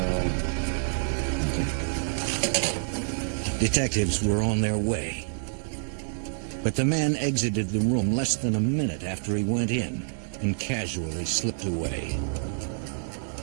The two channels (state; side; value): silent; left; digital silence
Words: Detectives were on their way. But the man exited the room less than a minute after he went in and casually slipped away.